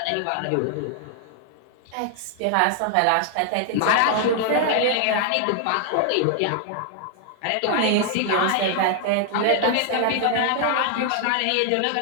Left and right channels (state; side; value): different; both; correlation 0.00